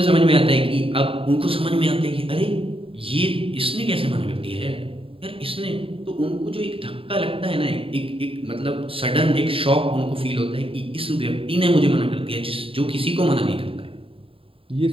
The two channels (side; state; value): left; late; 0.27 ms